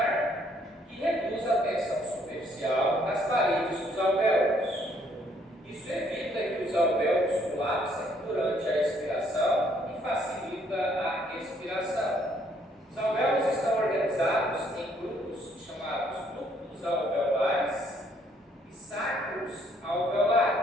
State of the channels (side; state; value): both; normal; correlation 0.67